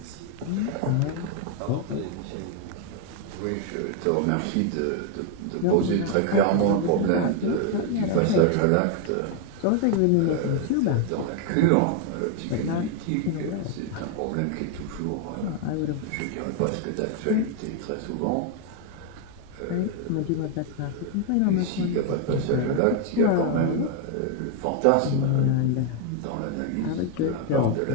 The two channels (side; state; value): both; different; correlation 0.00